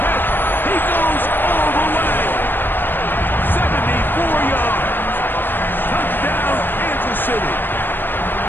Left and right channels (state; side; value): late; right; 0.095 ms